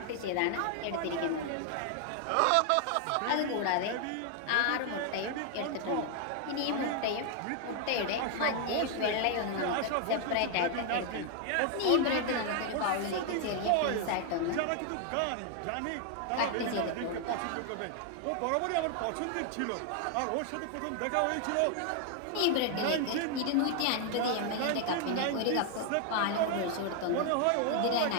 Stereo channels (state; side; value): different; both; correlation 0.00